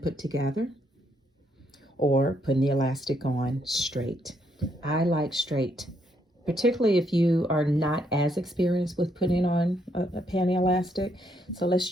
together, or putting the elastic on straight. I like straight, particularly if you are not as experienced with putting on a panty elastic. So let's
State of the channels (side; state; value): both; normal; correlation 0.74